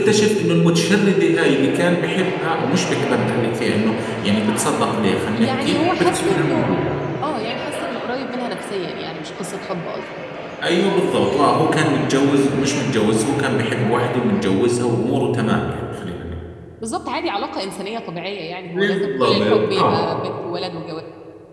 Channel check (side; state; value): both; identical; correlation 1.00